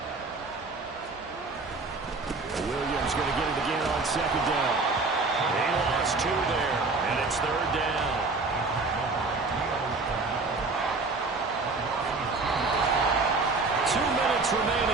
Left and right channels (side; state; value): left; quieter; 3.8 dB